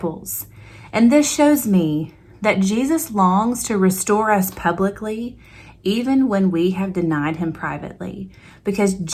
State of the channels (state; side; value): identical; both; correlation 1.00